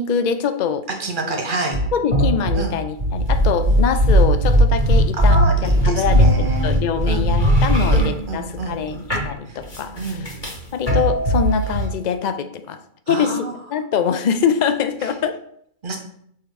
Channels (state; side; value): late; left; 2.3 ms